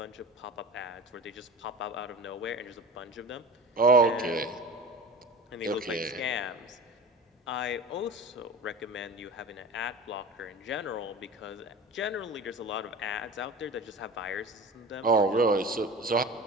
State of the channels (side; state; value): both; normal; correlation 0.35